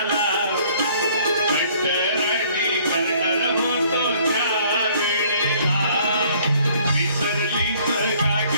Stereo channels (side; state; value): both; inverted; correlation -0.58